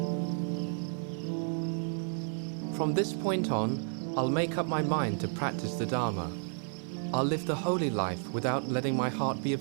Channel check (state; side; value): silent; left; 57 dB below the other